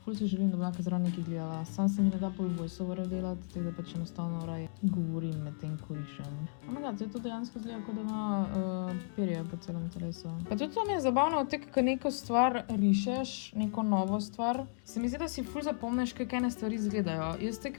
Ful se želim, da bi lahko zraven nekaj gledala. Sam se mi ne da pol voiceoverjev delati, tako da pač enostavno raj govorim med tem, ko išem. Oh my god, zdaj to dejansko zgleda, kot da ima perje po celem telesu. Pa tudi to mi je zabavno, tek, ko neko stvar rišeš, neko novo stvar, se mi zdi, da si ful zapomniš, kako ene stvari izgledajo. Jaz tek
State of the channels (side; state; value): right; silent; digital silence